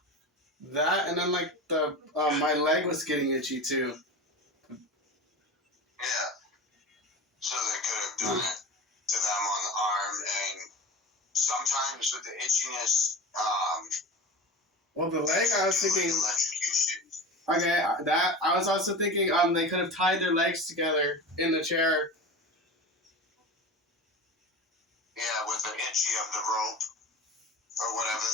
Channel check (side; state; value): both; normal; correlation 0.31